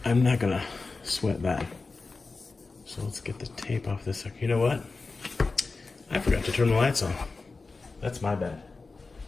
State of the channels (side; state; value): right; quieter; 3.9 dB